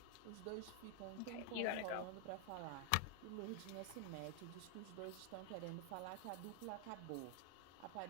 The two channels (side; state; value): both; different; correlation 0.00